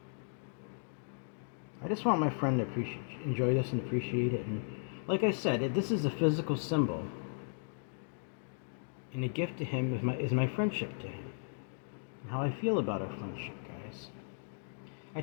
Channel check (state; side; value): silent; right; digital silence